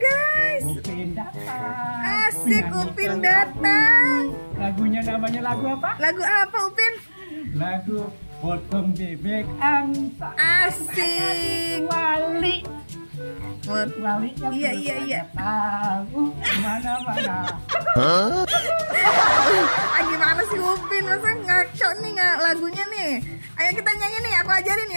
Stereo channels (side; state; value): both; inverted; correlation -1.00